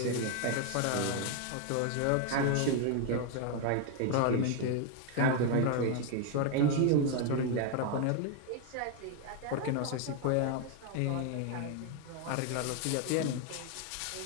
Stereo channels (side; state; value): both; different; correlation 0.01